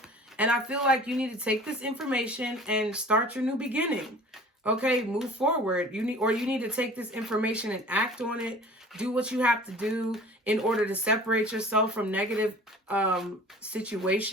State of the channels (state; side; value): normal; both; correlation 0.45